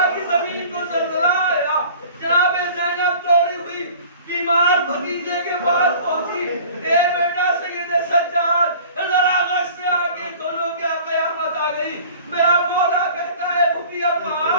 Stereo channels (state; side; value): inverted; both; correlation -0.46